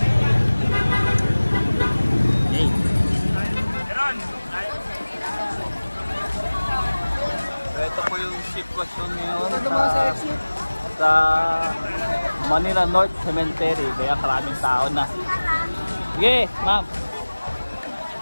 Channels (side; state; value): both; inverted; correlation -1.00